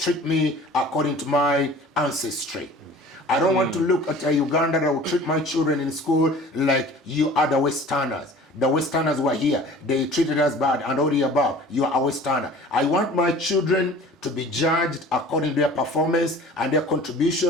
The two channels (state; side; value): normal; both; correlation 0.45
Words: me according to my ancestry. I don't want to look at a Uganda that will treat my children in school like you are the Westerners. The Westerners were here. They treated us bad and all the above. You are a Westerner. I want my children to be judged according to their performance and their